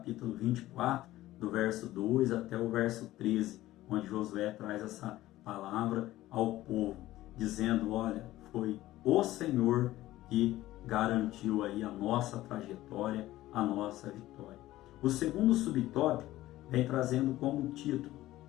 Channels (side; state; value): right; quieter; 15.8 dB